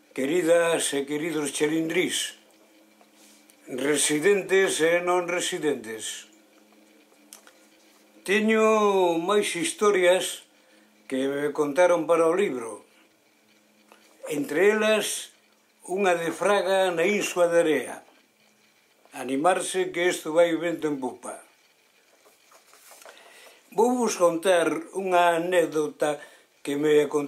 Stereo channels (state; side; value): identical; both; correlation 1.00